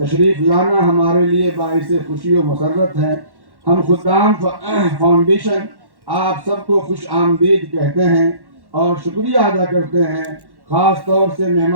لانا ہمارے لیے باعث خوشی و مسرت ہے. ہم خدام فاؤنڈیشن آپ سب کو خوش آمدید کہتے ہیں اور شکریہ ادا کرتے ہیں. خاص طور سے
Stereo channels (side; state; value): left; late; 1.1 ms